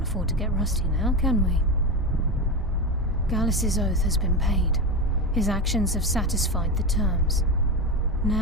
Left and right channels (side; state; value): both; normal; correlation 0.17